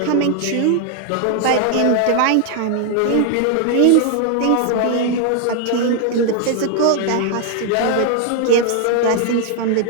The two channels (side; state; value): both; different; correlation 0.00